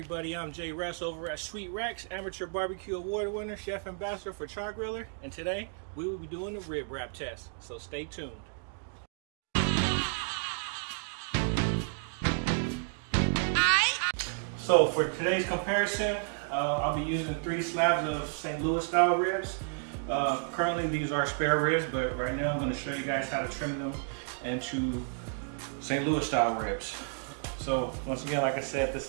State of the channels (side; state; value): left; silent; 57 dB below the other